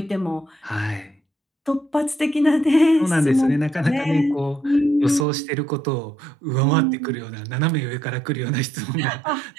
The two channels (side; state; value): left; drops out; at 5.2 s